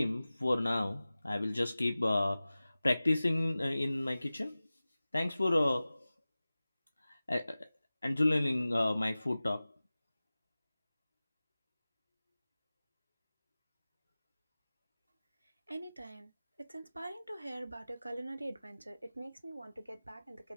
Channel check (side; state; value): both; inverted; correlation -0.97